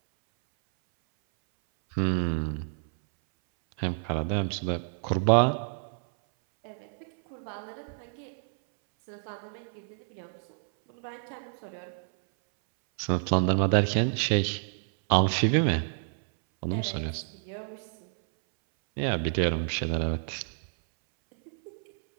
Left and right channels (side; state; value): left; silent; 59 dB below the other